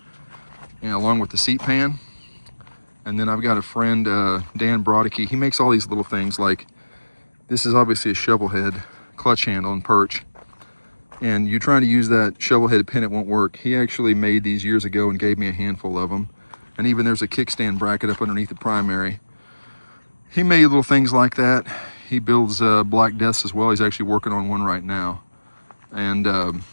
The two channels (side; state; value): both; inverted; correlation -1.00